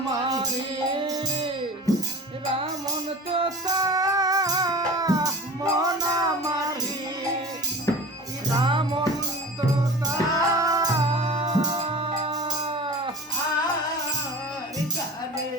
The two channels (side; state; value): both; normal; correlation 0.35